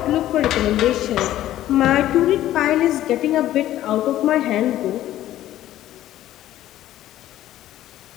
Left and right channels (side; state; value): right; quieter; 13.5 dB